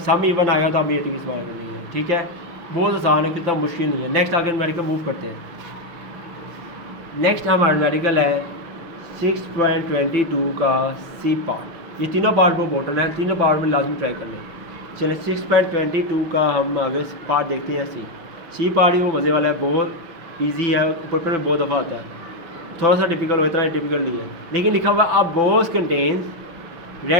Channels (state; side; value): late; left; 5.9 ms